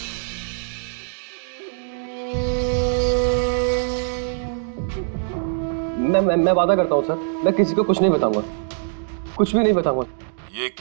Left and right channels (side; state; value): left; silent; digital silence